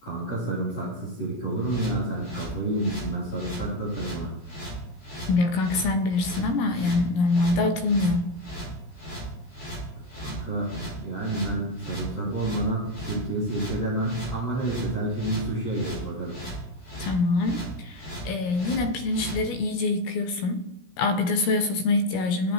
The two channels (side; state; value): right; late; 17 ms